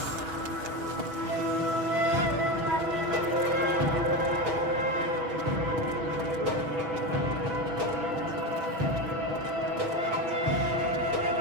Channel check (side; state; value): left; late; 6.0 ms